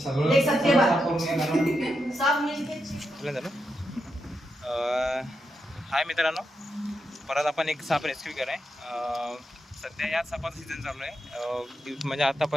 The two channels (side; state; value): both; normal; correlation 0.85